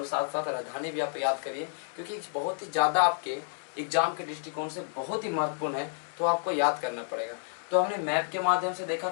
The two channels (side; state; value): right; silent; digital silence